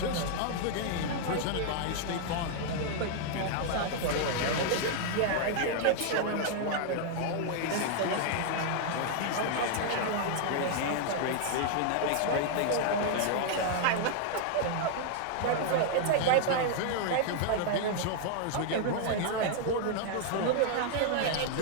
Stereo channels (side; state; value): both; different; correlation 0.00